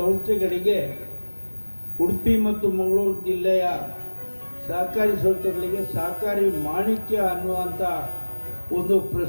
ಉಡುಪಿ ಮತ್ತು ಮಂಗಳೂರು ಜಿಲ್ಲೆಯ ಸಹಕಾರಿ ಸಂಸ್ಥೆಗಳಿಗೆ ಸಹಕಾರಿ ಮಾಣಿಕ್ಯ ಅನ್ನುವಂಥ ಒಂದು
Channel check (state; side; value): inverted; both; correlation -1.00